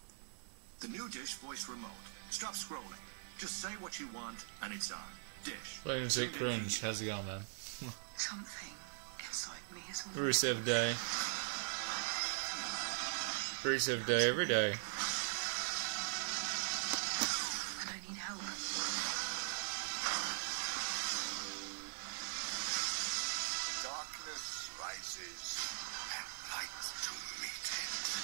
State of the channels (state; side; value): silent; left; 50 dB below the other